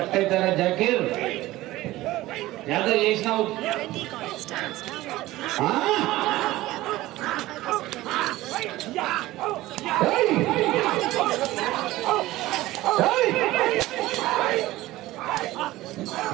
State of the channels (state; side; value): quieter; left; 17.2 dB